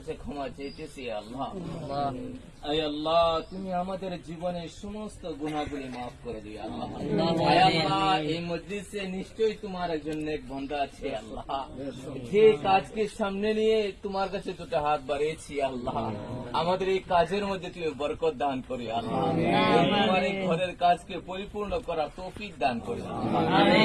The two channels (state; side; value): identical; both; correlation 1.00